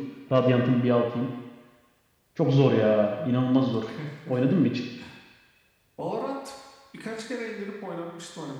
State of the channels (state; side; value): identical; both; correlation 1.00